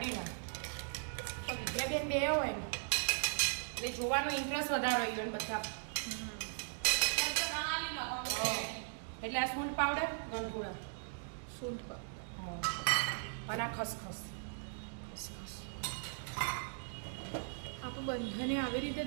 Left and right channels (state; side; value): silent; left; digital silence